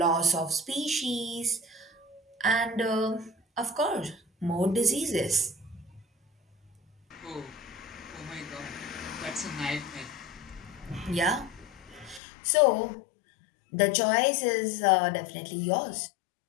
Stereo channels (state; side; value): drops out; right; at 12.2 s